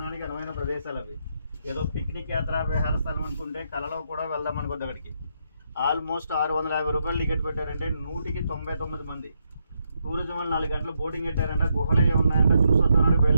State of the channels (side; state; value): both; inverted; correlation -0.79